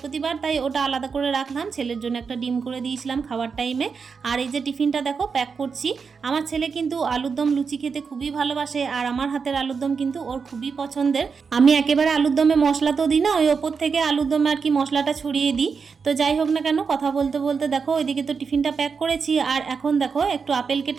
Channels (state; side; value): quieter; left; 5.5 dB